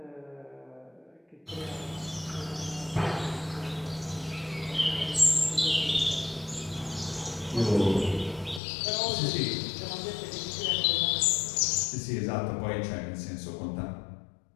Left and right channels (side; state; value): right; drops out; at 8.6 s